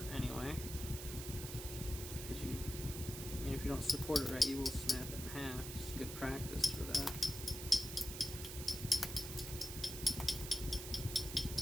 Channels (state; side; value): noise; right; hiss, 8 dB below the sound